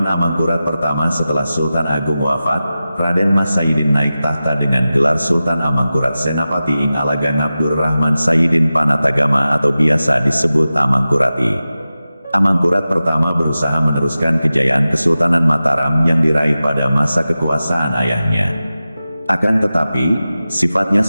Amangkurat pertama setelah Sultan Agung wafat, Raden Mas Saidin naik tahta dengan gelar Sultan Amangkurat Senapati Ing Alagang Abdur Rahman Saidin Panatagama atau biasa disebut Amangkurat I. Amangkurat pertama berusaha meneruskan kejayaan Kesultanan Mataram yang diraih pada masa kekuasaan ayahnya. Akan tetapi, sifatnya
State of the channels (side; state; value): both; inverted; correlation -0.95